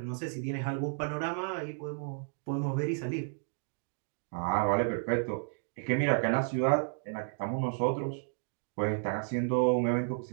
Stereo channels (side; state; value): left; silent; 56 dB below the other